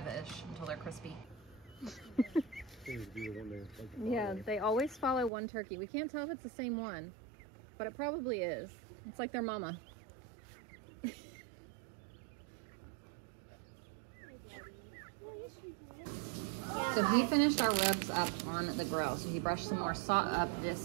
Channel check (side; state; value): left; drops out; at 5.3 s